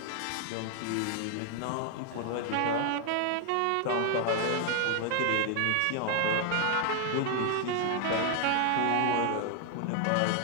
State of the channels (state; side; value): different; both; correlation 0.00